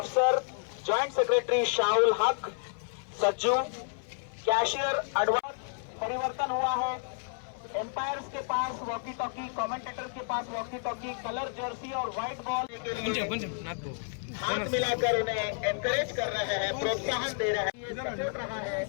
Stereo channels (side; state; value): right; silent; 57 dB below the other